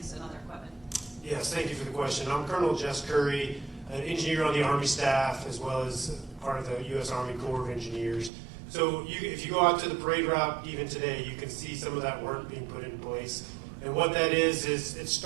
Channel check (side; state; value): left; drops out; at 8.3 s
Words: and other equipment? Yes, thank you for the question. I'm Colonel Jess Curry, an engineer on the Army staff, as well as part of the U.S. Army Corps of Engineers. So if you go out to the parade route even today, you can see some of that work being put in place. And what that is it